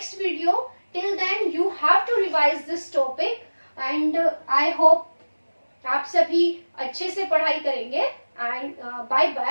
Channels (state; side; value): inverted; both; correlation -1.00